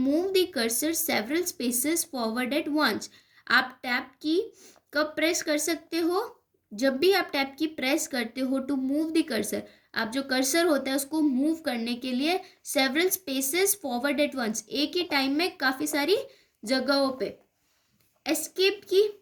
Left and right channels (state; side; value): identical; both; correlation 1.00